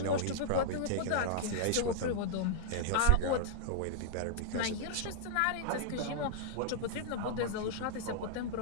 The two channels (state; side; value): different; both; correlation -0.01